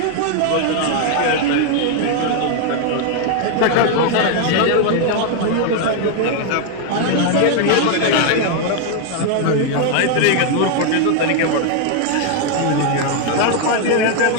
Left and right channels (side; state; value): both; different; correlation 0.00